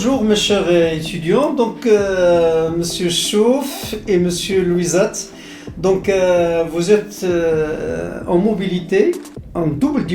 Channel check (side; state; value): both; identical; correlation 1.00